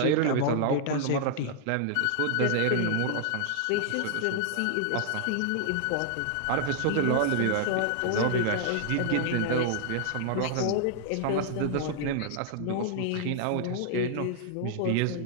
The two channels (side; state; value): both; different; correlation -0.01